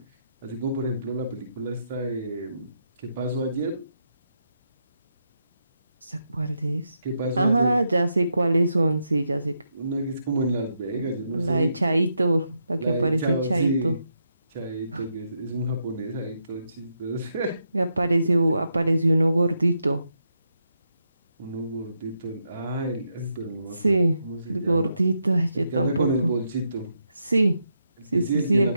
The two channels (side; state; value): both; inverted; correlation -0.82